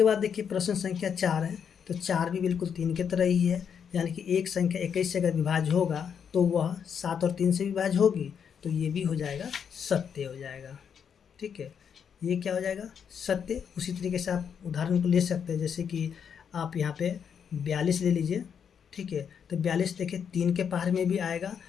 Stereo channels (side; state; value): right; quieter; 7.5 dB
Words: बाद देखिए प्रश्न संख्या 4 है, तो 4 भी बिल्कुल 3 की तरह ही है, यानी कि एक संख्या 21 से अगर विभाज्य होगा तो वह 7 और 3 से विभाज्य होगी, तो ये भी हो जाएगा सत्य हो जाएगा, ठीक है, ये क्या हो जाएगा, सत्य। उसी तरीके से आप उदाहरण को ले सकते हैं, जैसे कि आप यहाँ पे 42 ले लीजिए, ठीक है, तो 42 देखिए 3 के पहाड़े में भी आएगा